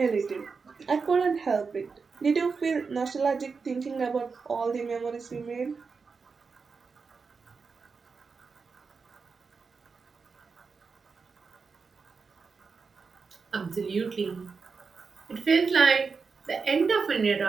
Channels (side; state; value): left; quieter; 5.0 dB